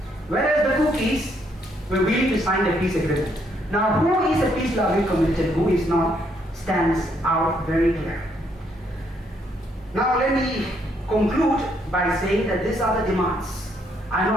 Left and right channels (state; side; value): normal; both; correlation 0.72